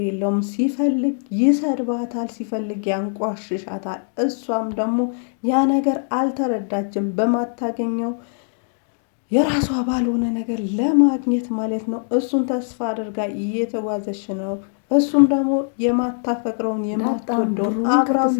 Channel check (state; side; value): silent; right; digital silence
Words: የለውም። ሲፈልግ ይሰድባታል፣ ሲፈልግ ያንቋሽሻታል። እሷም ደግሞ ያ ነገር አልተረዳችም። በማታገኘው የራሷ ባልሆነ ነገር ለማግኘት ማለት ነው እሱን ተስፋ አድርጋ እየተጓዘች ነው። እሱም ደግሞ የማታፈቅረውን የማትወደውን አብራው